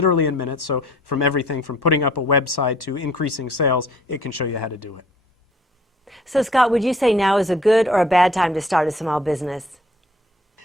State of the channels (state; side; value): normal; both; correlation 0.56